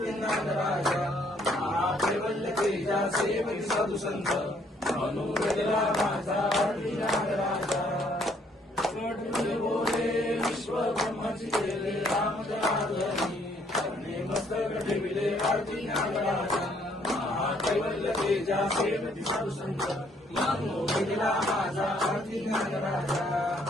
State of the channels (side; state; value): both; normal; correlation 0.66